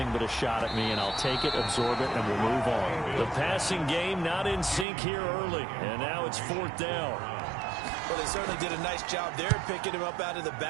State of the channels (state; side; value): drops out; left; at 4.9 s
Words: but a shot at me, and I'll take it, absorb it, and we'll move on. The passing game not in sync here early, and now it's 4th down. Well, they certainly did a nice job there, picking him up out of the